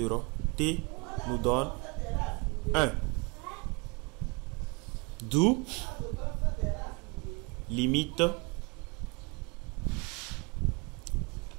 t nous donne 1. D'où limite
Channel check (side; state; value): left; quieter; 30.2 dB